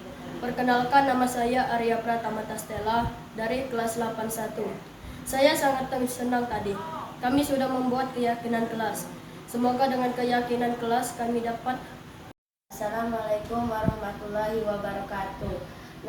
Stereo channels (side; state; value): both; identical; correlation 1.00